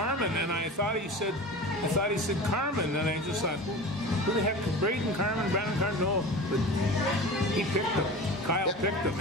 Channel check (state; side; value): normal; both; correlation 0.34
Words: and I thought he said Carmen, and I just thought, who the heck, Brandon Carmen? No, but he picked him. Kyle picked